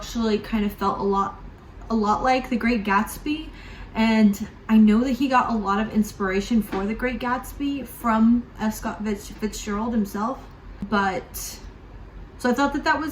kind of felt a lot like The Great Gatsby. And I know that he got a lot of inspiration for The Great Gatsby from F. Scott Fitzgerald himself. So I thought that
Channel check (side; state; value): both; identical; correlation 1.00